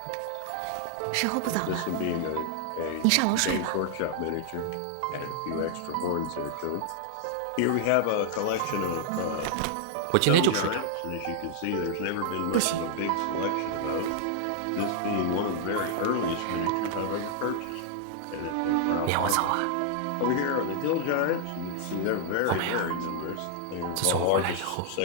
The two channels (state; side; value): different; both; correlation 0.00